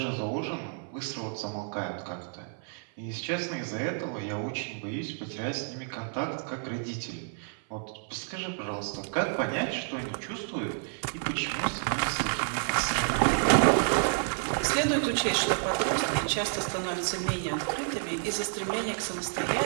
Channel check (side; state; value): left; silent; 58 dB below the other